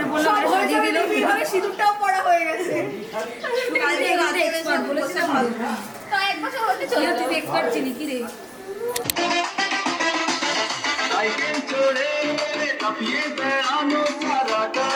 পড়লাম, আর সাজিয়ে দিলাম। এইভাবে সিঁদুরটাও পড়া হয়ে গেছে। কালকে রাতে এক্সপার্ট বলেছিলাম ভালো। তো এক বছর হতে চলে তুই এক্সপার্ট ছিলি কি রে? साइकिल छोड़े काफिए पैरानो सारा का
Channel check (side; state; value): both; identical; correlation 1.00